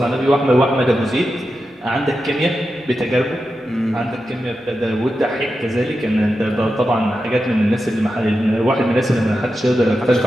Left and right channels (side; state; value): both; normal; correlation 0.90